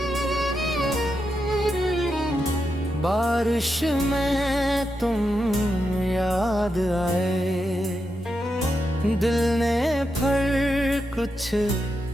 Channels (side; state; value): both; normal; correlation 0.86